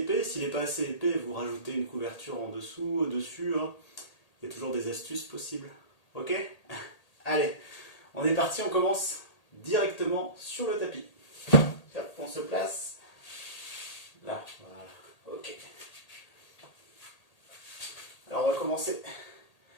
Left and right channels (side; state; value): right; late; 1.8 ms